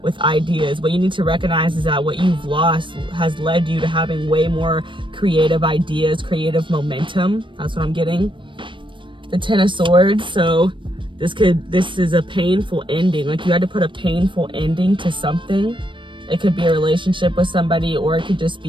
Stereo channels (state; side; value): late; left; 0.24 ms